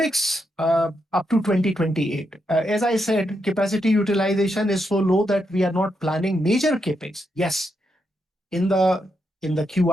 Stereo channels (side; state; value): both; normal; correlation 0.82